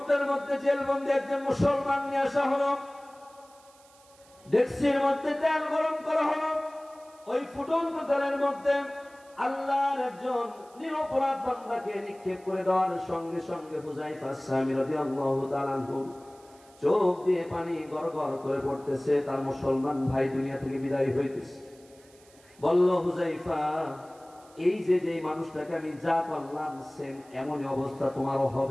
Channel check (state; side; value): noise; right; hiss, 27 dB below the sound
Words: মধ্যে জেলবন্দি একজন মুসলমান নিয়ে আসা হলো, ডেক্সির মধ্যে তেল গরম করা হলো, ওই ফুটন্ত তেলের মধ্যে আল্লাহর একজন নিরপরাধ বান্দাকে নিক্ষেপ করে দেওয়ার সঙ্গে সঙ্গে হুযায়ফা সামি রাদিয়াল্লাহু তাআলা আনহু চোখ দিয়ে পানি গড়গড় করে পড়তেছে, তার মুসলমান ভাই দুনিয়া থেকে বিদায় হইতেছে। বলল, হুযায়ফা, এই যে যে মানুষটাকে আমি যা করলাম সেম এমনই অবস্থা তোমারও